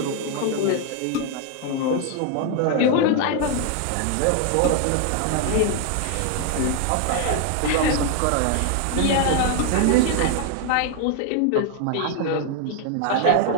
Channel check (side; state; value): both; different; correlation 0.00